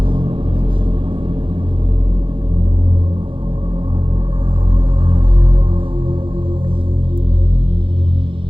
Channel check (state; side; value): late; left; 0.25 ms